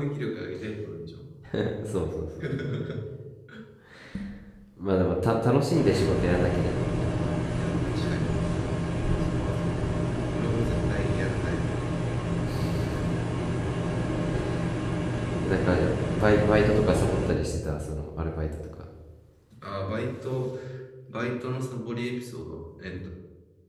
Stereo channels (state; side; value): identical; both; correlation 1.00